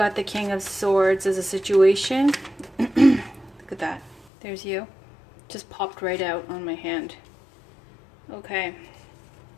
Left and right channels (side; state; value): right; drops out; at 4.3 s